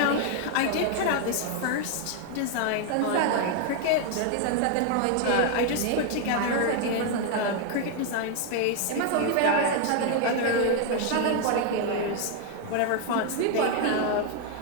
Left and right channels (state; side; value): different; both; correlation 0.00